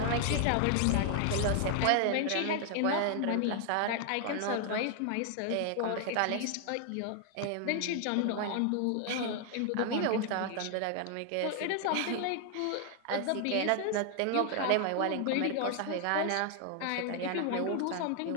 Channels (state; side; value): different; both; correlation 0.00